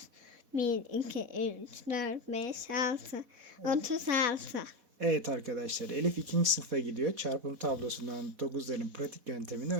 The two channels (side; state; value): left; late; 4.1 ms